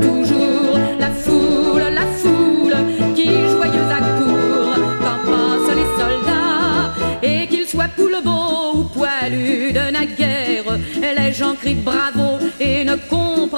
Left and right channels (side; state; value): both; inverted; correlation -1.00